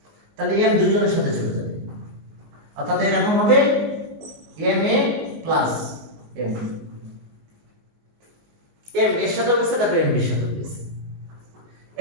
তাহলে m দুইজনের সাথে চলে যাবে, অর্থাৎ এরকম হবে m a plus m m এর সাথে বসে তারপরে m এর সাথে বসে,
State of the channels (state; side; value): late; left; 19 ms